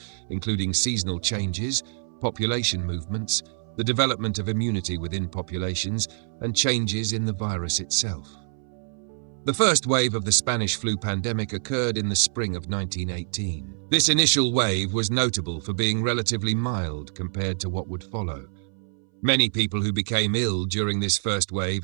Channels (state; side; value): silent; left; 59 dB below the other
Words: including seasonal changes, population movements, the development of immunity within populations, and changes in the virus itself. The first wave of the Spanish flu pandemic occurred in the spring of 1918. This initial wave was notable for being relatively mild compared to what would follow. Many people who became ill during this first